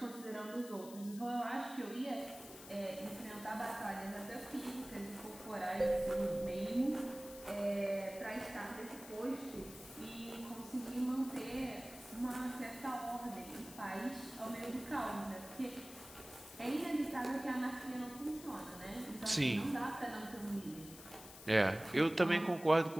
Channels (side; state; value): left; noise; hiss, 16 dB below the sound